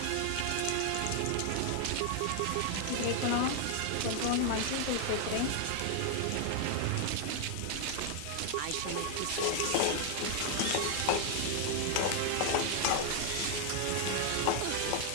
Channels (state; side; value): different; both; correlation 0.00